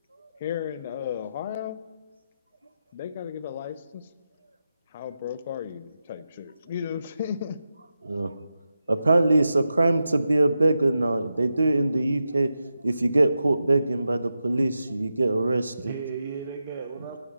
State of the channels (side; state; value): both; inverted; correlation -0.89